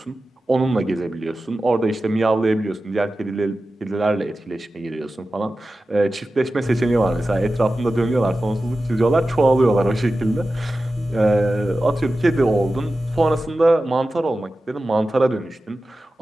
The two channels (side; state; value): both; normal; correlation 0.94